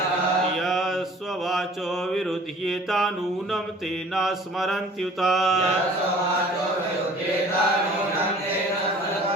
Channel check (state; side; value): normal; both; correlation 0.49